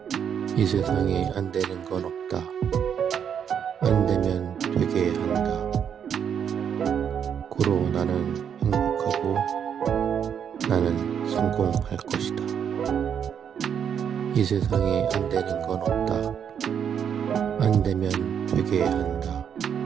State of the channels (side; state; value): left; quieter; 8.1 dB